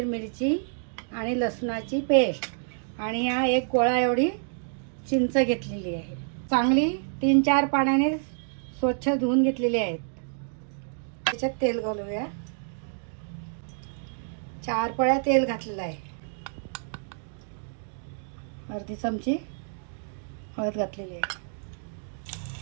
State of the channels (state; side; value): silent; left; digital silence